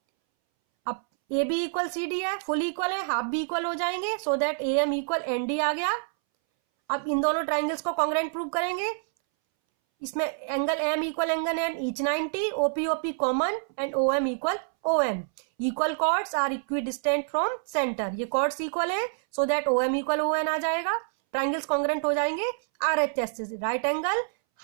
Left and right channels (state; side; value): silent; left; 60 dB below the other